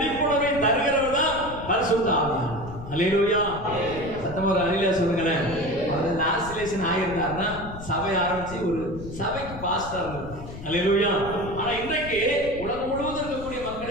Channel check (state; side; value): noise; left; rumble, 12 dB below the sound